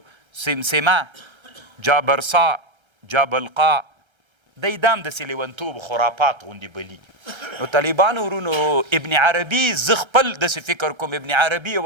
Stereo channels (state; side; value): late; left; 1.3 ms